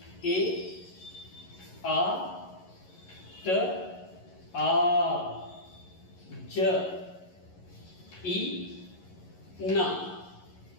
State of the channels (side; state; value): right; late; 11 ms